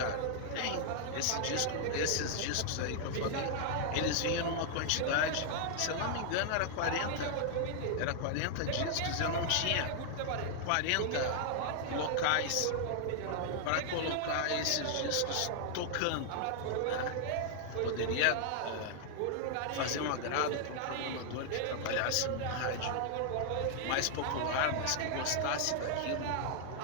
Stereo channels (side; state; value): both; different; correlation 0.00